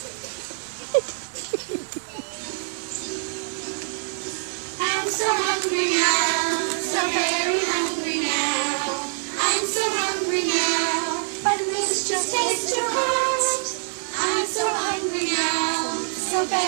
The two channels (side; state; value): left; silent; 57 dB below the other